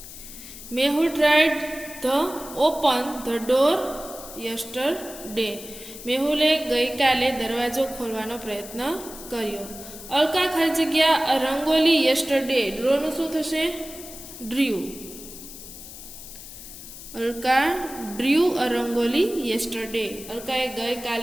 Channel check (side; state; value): left; noise; hiss, 14 dB below the sound